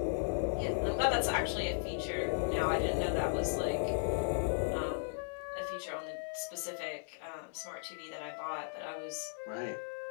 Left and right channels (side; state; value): right; silent; digital silence